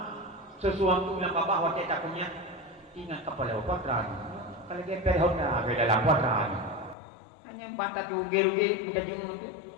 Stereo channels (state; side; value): drops out; right; at 7.0 s